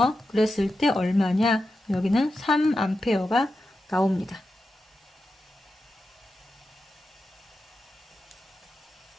그랬을 때 얼마냐? 여기는 3A가 나옵니다.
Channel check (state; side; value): normal; both; correlation 0.90